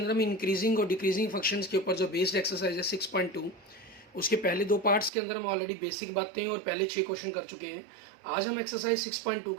हम इंक्रीजिंग और डिक्रीजिंग फंक्शंस के ऊपर जो बेस्ड एक्सरसाइज है 6.2, उसके पहले 2 पार्ट्स के अंदर हम ऑलरेडी बेसिक बातें और पहले 6 क्वेश्चन कर चुके हैं। आज हम एक्सरसाइज 6.2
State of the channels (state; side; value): drops out; left; at 5.1 s